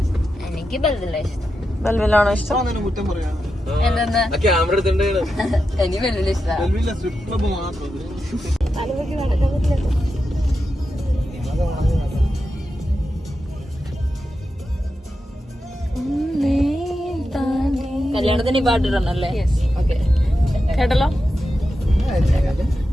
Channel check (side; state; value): both; normal; correlation 0.89